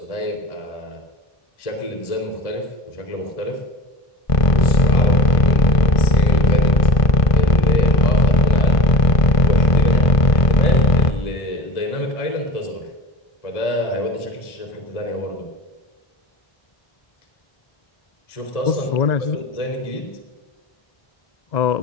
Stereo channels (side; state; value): right; late; 1.5 ms